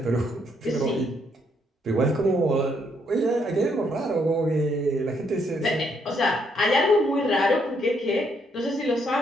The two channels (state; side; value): normal; both; correlation 0.73